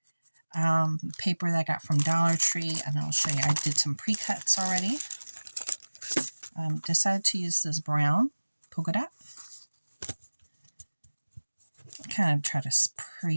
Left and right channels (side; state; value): both; inverted; correlation -1.00